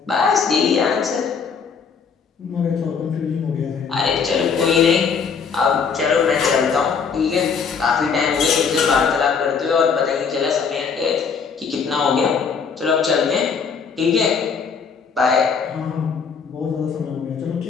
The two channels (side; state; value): right; quieter; 5.9 dB